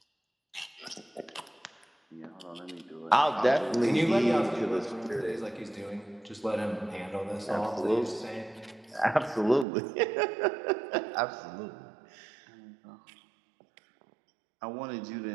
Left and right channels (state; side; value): drops out; left; at 9.7 s